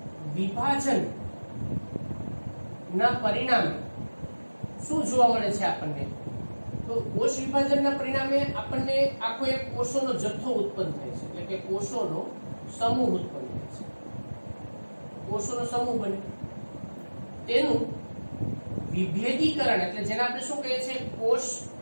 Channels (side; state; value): both; inverted; correlation -1.00